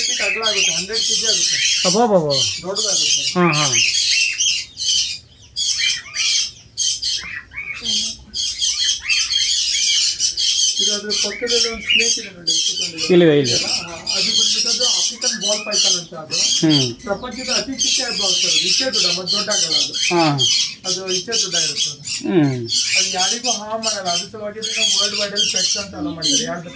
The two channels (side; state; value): both; identical; correlation 1.00